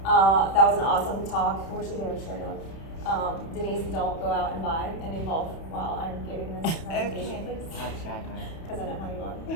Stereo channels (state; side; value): late; right; 31 ms